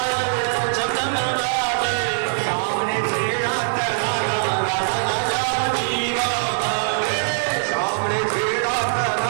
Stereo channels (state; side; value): silent; left; digital silence